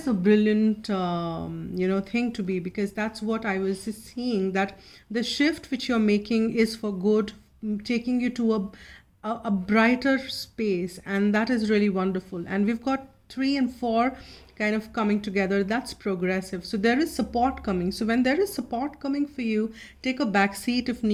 a brilliant, thing to be, because that's what I was seeing, that the shift which you're making is for good, taking you to a brighter space. And that is really wonderful. And we've got 3 and 4 kind of coming together. That's progressive. So there is support coming. So when there is support coming for you, take a back seat if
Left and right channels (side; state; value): both; identical; correlation 1.00